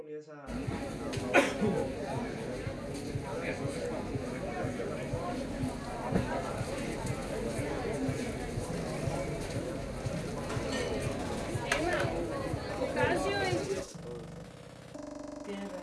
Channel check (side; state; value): both; identical; correlation 1.00